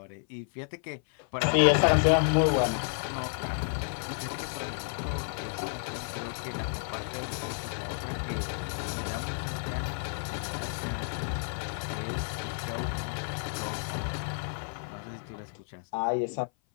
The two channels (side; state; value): right; silent; 55 dB below the other